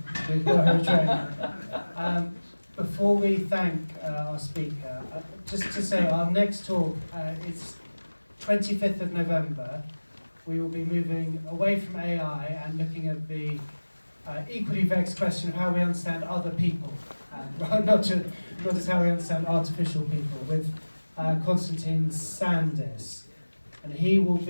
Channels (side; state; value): both; inverted; correlation -1.00